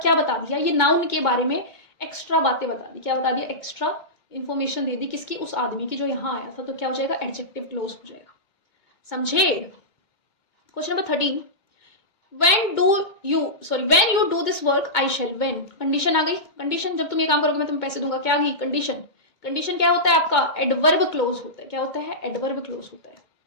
क्या बता दिया, ये नाउन के बारे में एक्स्ट्रा बातें बता दी। क्या बता दिया, एक्स्ट्रा इंफॉर्मेशन दे दी, किसकी, उस आदमी की जो यहां आया था। तो क्या हो जाएगा, एडजेक्टिव क्लोज हो जाएगा। समझे? Question number 13, when you do this work I shall, when condition आ गई। कंडीशन, जब तुम ये काम करोगे मैं तुम्हें पैसे दूंगा, क्या आ गई, कंडीशन। कंडीशन क्या होता है आपका, एडवर्ब क्लोज होता है। क्या होता है, एडवर्ब क्लोज होता है।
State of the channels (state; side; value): late; right; 2.2 ms